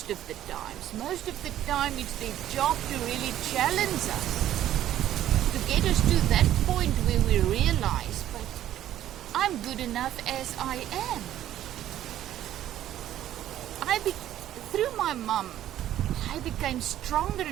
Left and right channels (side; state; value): left; quieter; 12.4 dB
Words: of the times. Most of the time it's their job to really challenge us get us to that point where we realize, but I'm good enough as I am. Through my mum, I became stronger